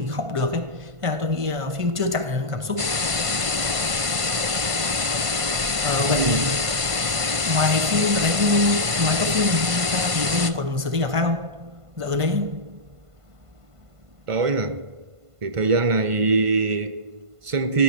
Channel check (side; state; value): left; late; 1.5 ms